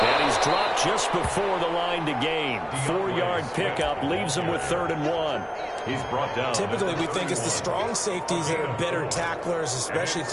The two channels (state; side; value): identical; both; correlation 1.00